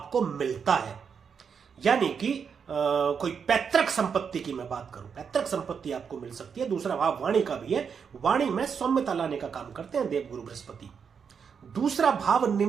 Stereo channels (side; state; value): left; quieter; 6.6 dB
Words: मिलता है। यानी कि कोई पैतृक संपत्ति की मैं बात करूं, पैतृक संपत्ति आपको मिल सकती है। दूसरा भाव वाणी का भी है, वाणी में सौम्यता लाने का काम करते हैं देवगुरु बृहस्पति। दूसरा भाव